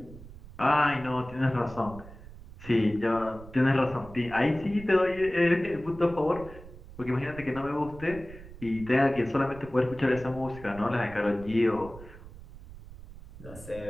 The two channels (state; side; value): noise; right; rumble, 17 dB below the sound